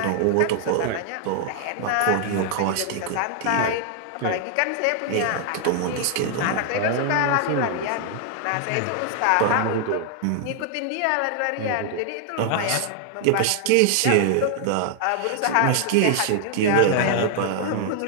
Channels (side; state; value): both; different; correlation 0.00